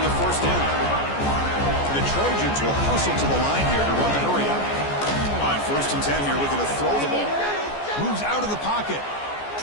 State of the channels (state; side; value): late; right; 14 ms